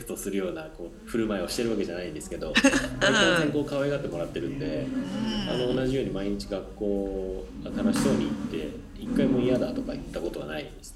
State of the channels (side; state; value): both; identical; correlation 1.00